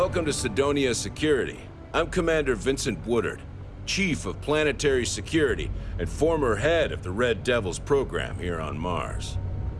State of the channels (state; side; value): identical; both; correlation 1.00